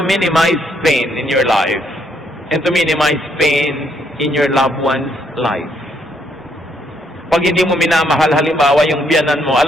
minimize pain in your life and to minimize pain in your loved one's life. Pag hindi mo minamahal, halimbawa yung biyanan mo,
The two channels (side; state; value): both; normal; correlation 0.72